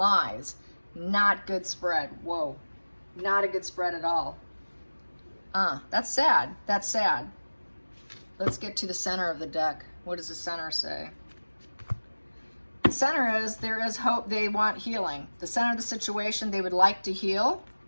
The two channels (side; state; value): both; inverted; correlation -1.00